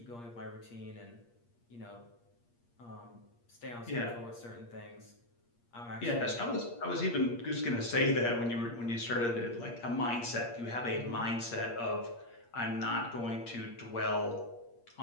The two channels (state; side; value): late; right; 8.5 ms